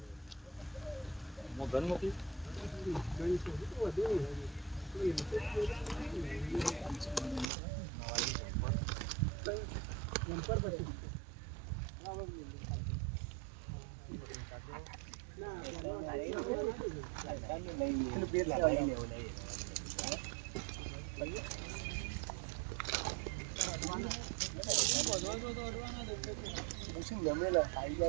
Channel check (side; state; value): left; drops out; at 7.5 s